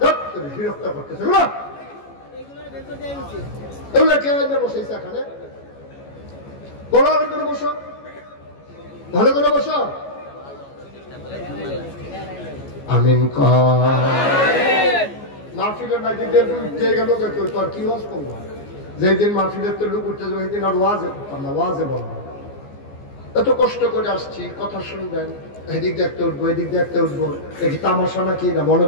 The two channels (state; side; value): late; right; 14 ms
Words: বিরক্ত করতেছে বসেছে এখানে ভালো করে বসো ভালো করে বসো আমিন মাহফিলের উঠতে গেল তো আর কি ওয়াজ করবো যেদিন মাহফিলের তো লোক উঠতে যাবে সেদিন আর ওয়াজে করতাম না ওয়াজে বলবো এত কষ্ট করে আসছি কথা শুনবেন এদিক দেখতে উঠবো এদিক দেখতে উঠবো এটি তামাশা নাকি না মনে